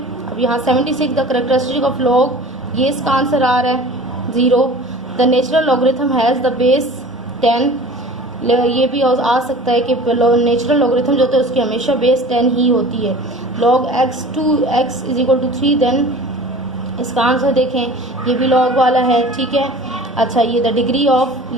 अब यहाँ 76 the characteristic of log, ये इसका answer आ रहा है 0। The natural logarithm has the base 10, ये भी आ सकता है कि नेचुरल लॉगरिथम जो होता है उसकी हमेशा बेस 10 ही होती है। log x 2x is equal to 3 then इसका आंसर देखें, ये भी लॉग वाला है, ठीक है। अच्छा, ये द डिग्री ऑफ,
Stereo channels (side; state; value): both; normal; correlation 0.42